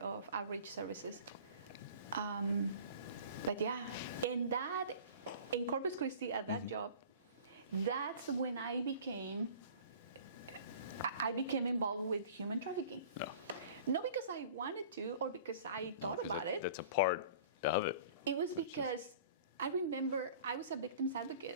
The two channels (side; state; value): both; inverted; correlation -0.44